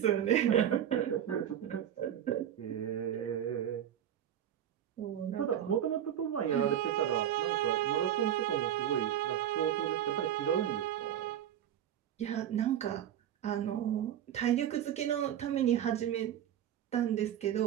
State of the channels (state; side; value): quieter; left; 10.4 dB